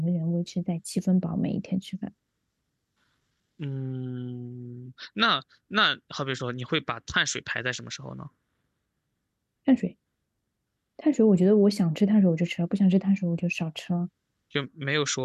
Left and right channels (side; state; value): both; identical; correlation 1.00